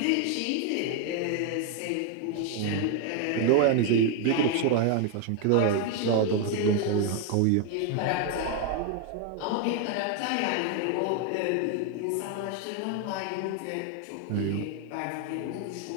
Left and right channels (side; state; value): both; different; correlation 0.01